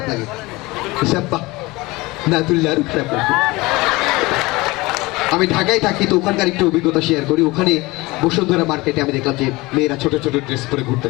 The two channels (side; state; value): right; quieter; 21.9 dB